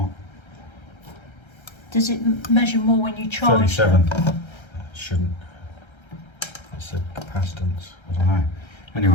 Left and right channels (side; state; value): right; late; 1.3 ms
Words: Does it measure more when you charge? 37. It shouldn't. It said capacitance. I don't know.